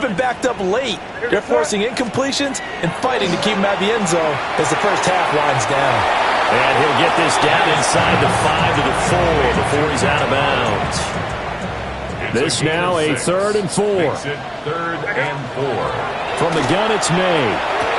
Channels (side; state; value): both; identical; correlation 1.00